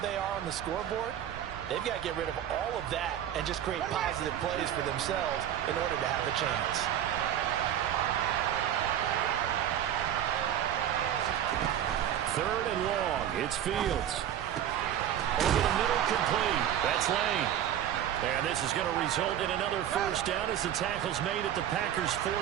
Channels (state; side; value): quieter; left; 10.6 dB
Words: are on the scoreboard, they've got to get rid of all of that and just create positive plays for themselves in order to have a chance. Third and long. It's Fields. Over the middle, complete. That's Lane. And this is going to result in another first down as the tackle's made at the Packers'